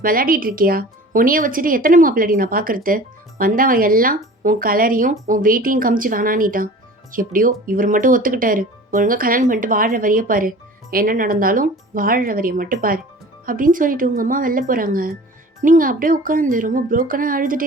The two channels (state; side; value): normal; both; correlation 0.42